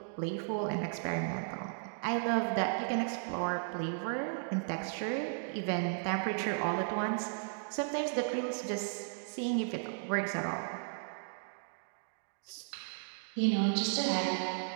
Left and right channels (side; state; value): left; silent; digital silence